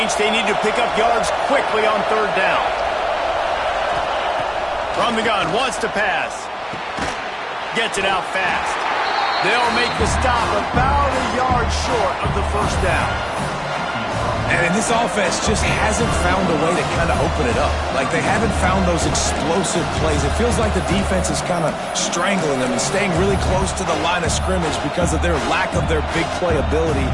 They need to pick up yards quickly on 3rd down. From the gun, wants to pass. Gets it out fast. They'll make the stop about a yard short of the 1st down. And this offense just hasn't found a way to kind of open it up. Like, they haven't found those explosive plays. It feels like the defense is kind of strangling them and staying really close to the line of scrimmage because of their lack of their big play ability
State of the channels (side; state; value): both; identical; correlation 1.00